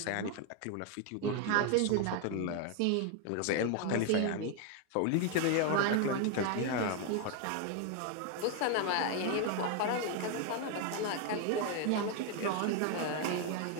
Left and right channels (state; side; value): different; both; correlation 0.01